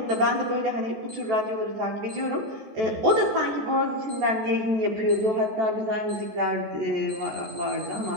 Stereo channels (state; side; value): late; left; 14 ms